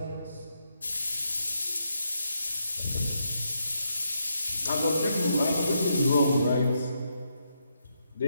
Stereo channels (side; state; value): both; inverted; correlation -0.80